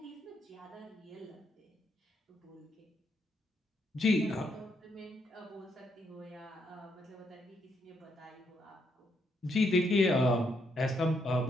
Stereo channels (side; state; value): both; normal; correlation 0.76